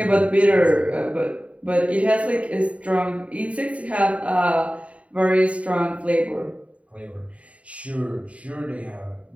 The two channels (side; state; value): left; late; 0.066 ms